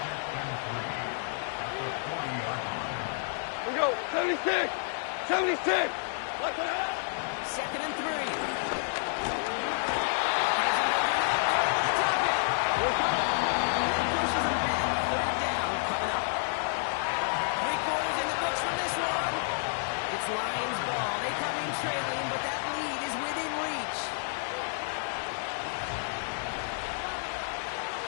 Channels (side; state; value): right; silent; digital silence